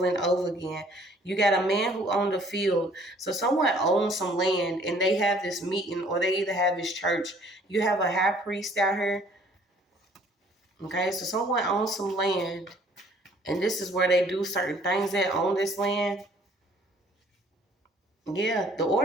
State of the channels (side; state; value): both; normal; correlation 0.58